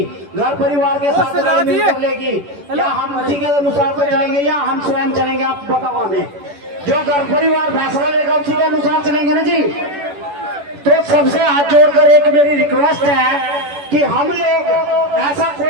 घर परिवार के साथ मिलकर लेगी, या हम उसी के अनुसार से चलेंगे या हम स्वयं चलेंगे, आप बताओ हमें। जो घर परिवार फैसला लेगा उसी के अनुसार चलेंगे ना जी। तो सबसे हाथ जोड़कर एक मेरी रिक्वेस्ट है कि हम लोग ऐसा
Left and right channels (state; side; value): late; left; 10 ms